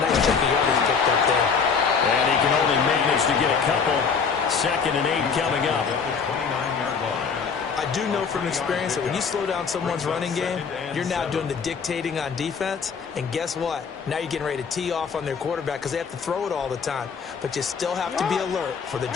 chunk of yardage picked up there. And he can only manage to get a couple. 2nd and 8 coming up. I do know from experience that when you slow down someone's running game, you're now doing the dictating on defense. And guess what? Now you're getting ready to tee off on their quarterback because they have to throw it all the time. But you still have to be alert for the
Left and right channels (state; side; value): quieter; right; 5.9 dB